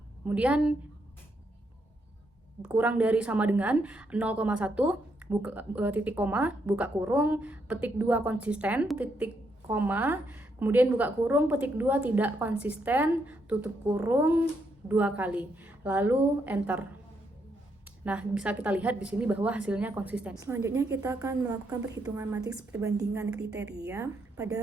kemudian kurang dari sama dengan 0,1 titik koma buka kurung petik 2 konsisten titik koma kemudian buka kurung petik 2 tidak konsisten tutup kurung 2 kali lalu enter. Nah, bisa kita lihat di sini bahwa hasilnya konsisten. Selanjutnya kita akan melakukan perhitungan matriks perbandingan kriteria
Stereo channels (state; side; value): normal; both; correlation 0.77